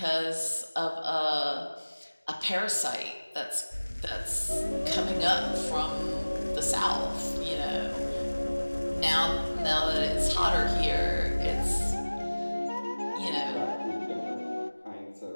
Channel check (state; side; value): inverted; both; correlation -1.00